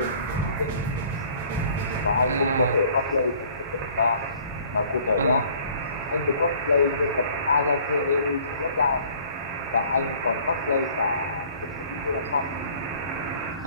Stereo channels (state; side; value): inverted; both; correlation -0.54